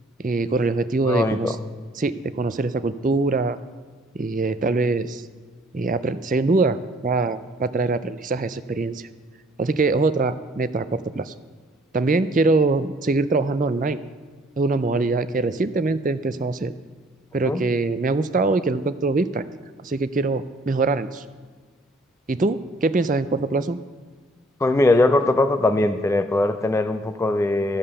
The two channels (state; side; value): normal; both; correlation 0.60